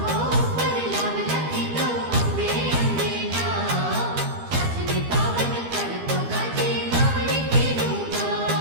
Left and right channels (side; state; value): left; late; 13 ms